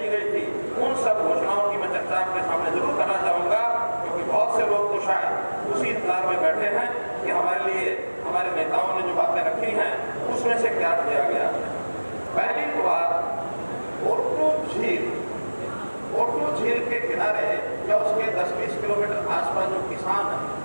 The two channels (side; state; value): both; inverted; correlation -1.00